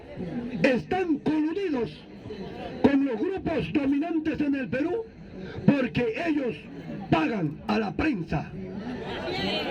Están coludidos con los grupos dominantes en el Perú porque ellos pagan a la prensa.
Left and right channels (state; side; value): identical; both; correlation 1.00